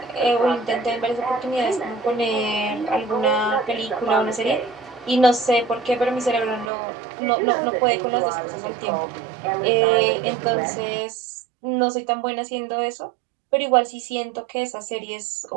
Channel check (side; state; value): left; drops out; at 6.7 s